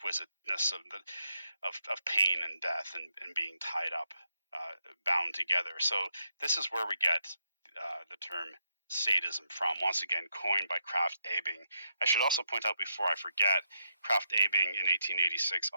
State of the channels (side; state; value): both; inverted; correlation -0.80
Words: of pain and death and being tied up, bound together. So this is where we get the term sadism from. Once again, coined by Krafft-Ebing. I should also point out before I forget, Krafft-Ebing in 1886